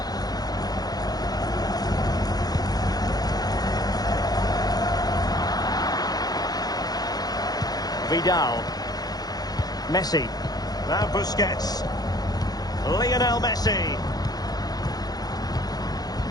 Vidal. Messi. Now Busquets. Lionel Messi.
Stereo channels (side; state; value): right; late; 0.19 ms